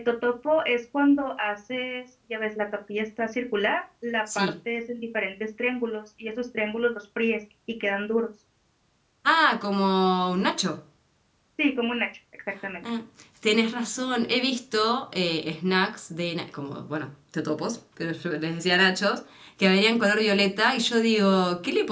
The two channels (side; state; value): both; identical; correlation 1.00